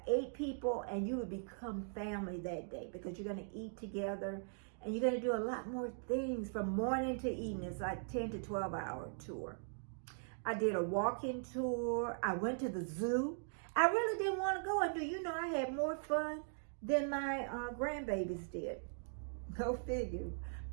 8 people and you will become family that day because you're going to eat together and you're going to do a lot more things from morning to evening. It's like 10 to 12 hour tour. I did a walk-in tour. I went to the zoo. I really didn't want to go. And do you know I had more fun than my grandbabies did. Go figure.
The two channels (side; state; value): left; silent; digital silence